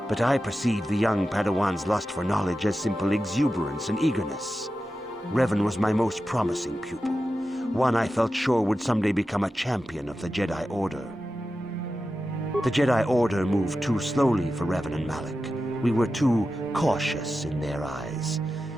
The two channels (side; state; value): both; normal; correlation 0.92